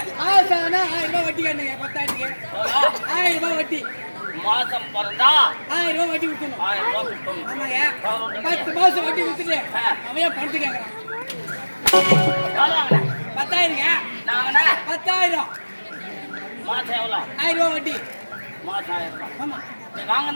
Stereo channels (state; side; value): inverted; both; correlation -1.00